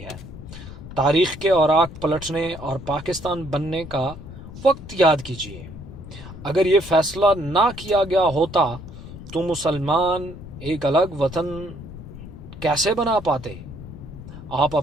ہے۔ تاریخ کے اوراق پلٹنے اور پاکستان بننے کا وقت یاد کیجیے۔ اگر یہ فیصلہ نہ کیا گیا ہوتا تو مسلمان ایک الگ وطن کیسے بنا پاتے؟ آپ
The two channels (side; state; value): left; noise; rumble, 13 dB below the sound